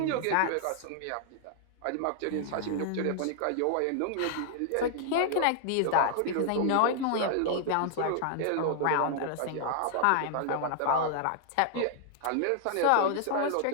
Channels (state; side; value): different; both; correlation -0.01